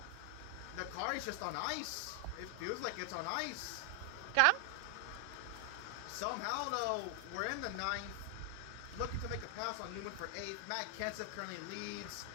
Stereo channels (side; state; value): both; different; correlation 0.00